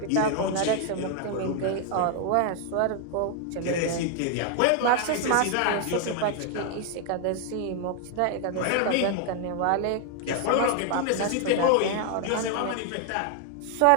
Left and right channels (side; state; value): both; different; correlation 0.00